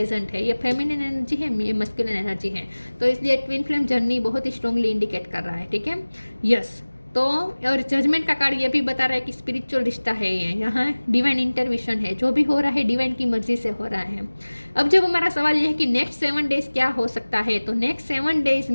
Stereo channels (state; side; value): inverted; both; correlation -1.00